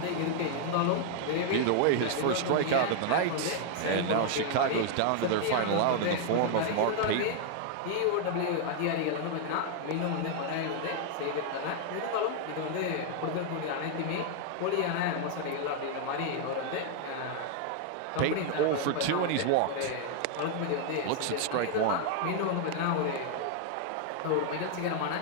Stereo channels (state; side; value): different; both; correlation 0.00